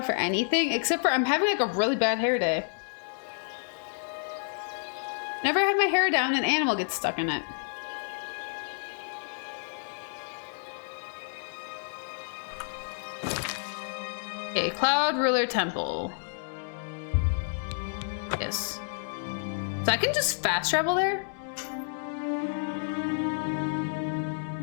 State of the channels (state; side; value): silent; right; digital silence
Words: for anything except for I'm having like a really bad hair day. Never have my hair down, an animal gets stuck in it. Okay, Cloud Ruler Temple. Yes. So I can just fast travel there?